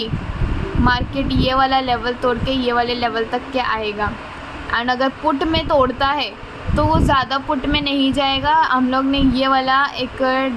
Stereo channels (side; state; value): both; identical; correlation 1.00